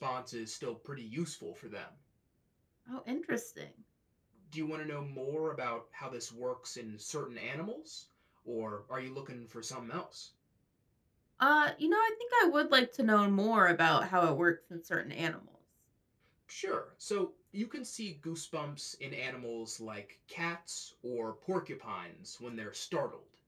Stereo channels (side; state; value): both; identical; correlation 1.00